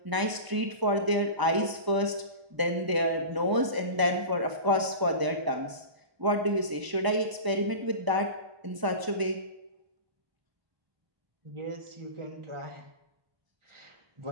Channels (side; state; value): left; late; 1.0 ms